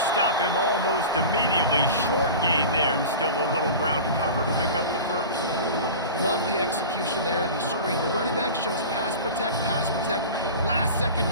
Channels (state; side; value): inverted; both; correlation -0.34